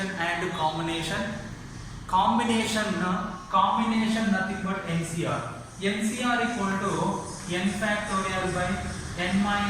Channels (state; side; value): identical; both; correlation 1.00